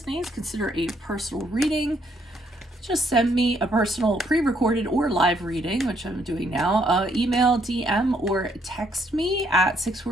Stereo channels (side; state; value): both; normal; correlation 0.71